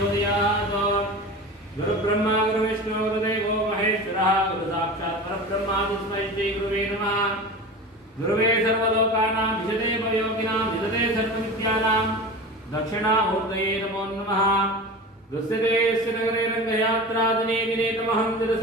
गुरुब्रह्मा गुरुविष्णु गुरुदेवो महेश्वरः गुरुसाक्षात् परब्रह्म तस्मै श्री गुरुवे नमः गुरुवे सर्वलोकानां विशदे भवयोगिनां विशदे सर्वविद्यानां दक्षिणामूर्तये नमो नमः दुस्सिते नगरे रङ्गयात्रादिने दिने तमहं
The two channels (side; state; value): both; normal; correlation 0.32